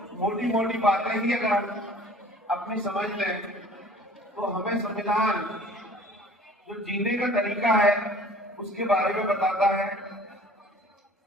मोटी मोटी बातें ही अगर हम अपनी समझ लें तो हमें संविधान जो जीने का तरीका है उसके बारे में बताता है,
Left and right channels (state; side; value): normal; both; correlation 0.49